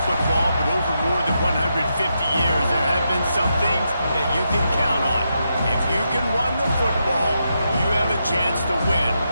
football, but over more than 150 years, there have been some things that you can count on. If you can run the football, you have a chance to win.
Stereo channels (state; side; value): inverted; both; correlation -0.84